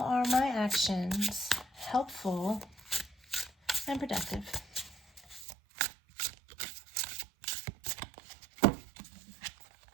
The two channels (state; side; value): drops out; left; at 5.5 s